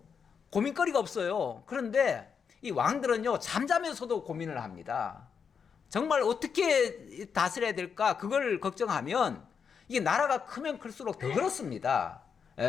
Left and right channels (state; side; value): quieter; right; 6.5 dB